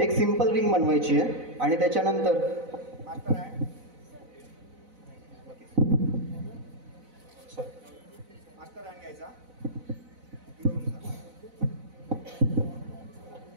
सिंपल रिंग बनवायची आहे आणि त्याच्यानंतर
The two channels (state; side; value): late; left; 4.0 ms